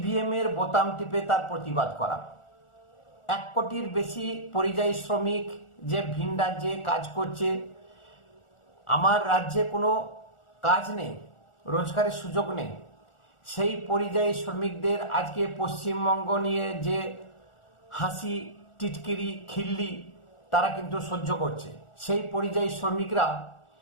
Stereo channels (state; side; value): late; right; 1.4 ms